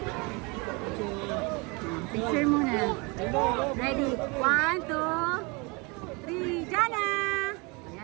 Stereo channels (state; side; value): quieter; left; 28.5 dB